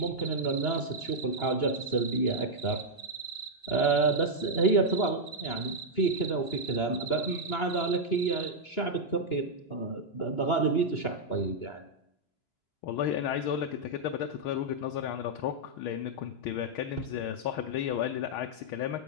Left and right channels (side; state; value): right; late; 2.9 ms